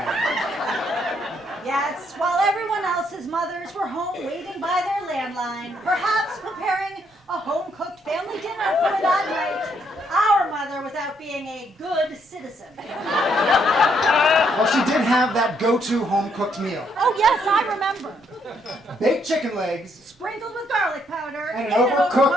Yes, while everyone else's mothers were home waiting by their landline, perhaps preparing a home-cooked family dinner for that night, our mother was out being a good citizen. Well, she did have that go-to home-cooked meal. Oh yes, I remember. Baked chicken legs. Sprinkled with garlic powder. And an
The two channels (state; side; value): normal; both; correlation 0.72